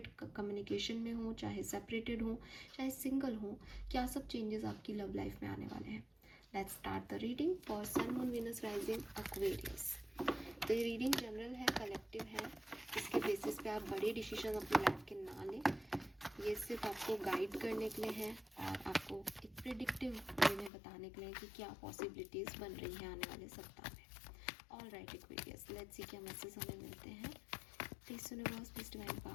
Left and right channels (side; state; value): right; drops out; at 20.7 s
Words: कम्युनिकेशन में हो, चाहे सेपरेटेड हो, चाहे सिंगल हो, क्या सब चेंजेस आपकी लव लाइफ में आने वाले हैं। Let's start the reading for sun moon Venus rising Aquarius. तो ये रीडिंग जनरल है, कलेक्टिव है। इसके बेसिस पे आप बड़े डिसीजन अपनी लाइफ के ना लें। ये सिर्फ आपको गाइड करने के लिए है और आपको एक प्रिडिक्टिव वे में बताने के लिए कि क्या पॉसिबिलिटीज़ बन रही हैं आने वाले सप्ताह में। All right Aquarius, let's see क्या मैसेज हमें मिलते हैं। Please universe, please divine